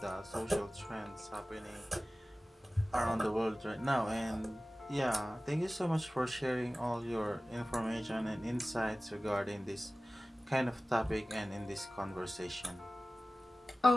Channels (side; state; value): both; normal; correlation 0.97